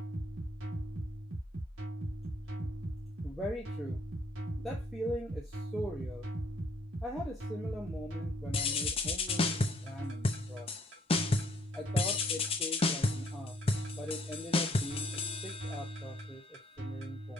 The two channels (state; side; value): normal; both; correlation 0.66